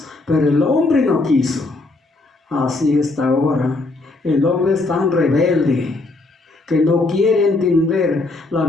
pero el hombre no quiso. Así está ahora. El hombre es tan rebelde que no quiere entender la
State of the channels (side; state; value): right; quieter; 3.2 dB